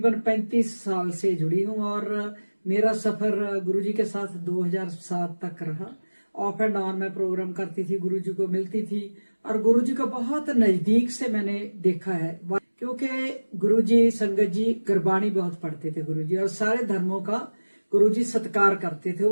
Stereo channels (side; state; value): both; inverted; correlation -1.00